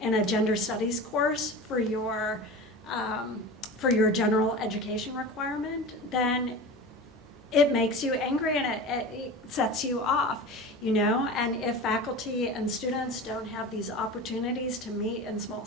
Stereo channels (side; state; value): both; normal; correlation 0.32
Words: a gender studies course for your general education requirement, then it makes you angry and it sets you off, and if faculty and students don't have these opportunities to meet in small